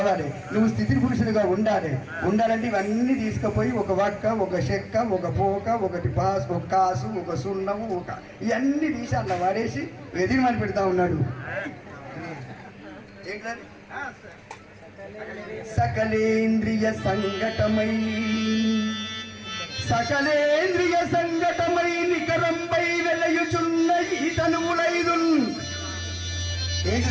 నువ్వు స్థితి పురుషులుగా ఉండాలంటే ఇవన్నీ తీసుకుపోయి ఒక వక్క, ఒక చెక్క, ఒక పోక, ఒకటి పాస్, ఒక కాసు, ఒక సున్నము, ఇవన్నీ తీసి అట్లా వాడేసి ఎదిరిమని పెడతా ఉన్నాడు. ఏంటది? సకలేంద్రియ సంఘటమై నికరంపై వెలయుచున్న ఈ తనువులైదు.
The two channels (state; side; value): identical; both; correlation 1.00